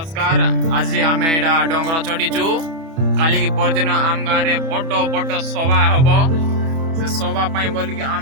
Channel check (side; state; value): left; late; 31 ms